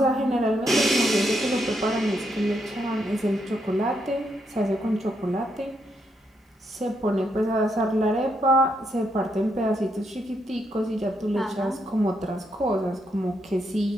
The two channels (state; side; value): normal; both; correlation 0.78